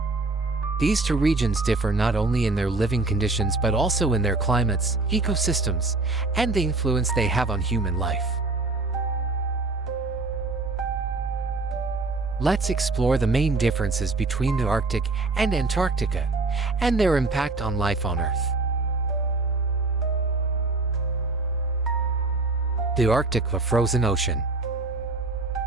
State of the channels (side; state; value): left; quieter; 3.4 dB